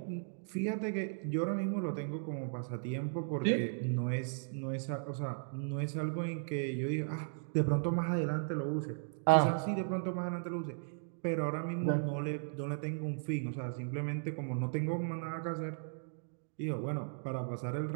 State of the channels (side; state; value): left; silent; digital silence